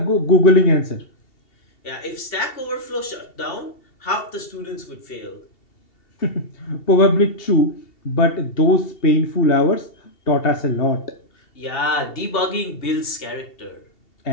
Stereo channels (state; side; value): late; right; 2.7 ms